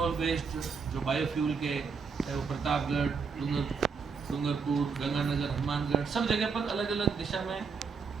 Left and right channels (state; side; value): quieter; left; 5.4 dB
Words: बेस्ड जो बायोफ्यूल के, चाहे वो प्रतापगढ़, डूंगरपुर, गंगानगर, हनुमानगढ़, सब जगह पर अलग अलग दिशा में